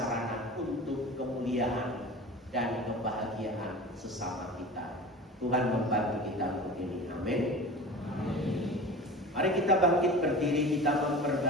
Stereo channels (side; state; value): both; normal; correlation 0.35